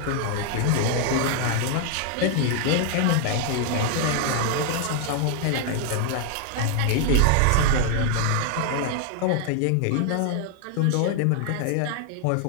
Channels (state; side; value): different; both; correlation 0.00